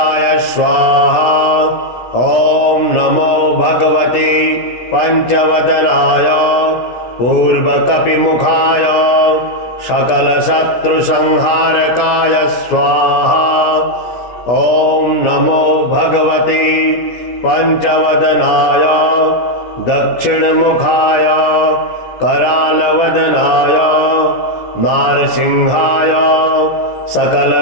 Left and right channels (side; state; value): right; late; 16 ms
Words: स्वाहा। ॐ नमो भगवते पंचवदनाय पूर्वकपिमुखाय सकलशत्रुसंहारकाय स्वाहा। ॐ नमो भगवते पंचवदनाय दक्षिणमुखाय करालवदनाय नारसिंहाय